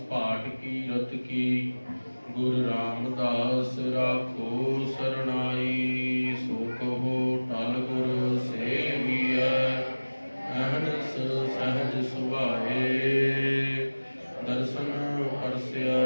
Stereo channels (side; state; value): both; inverted; correlation -1.00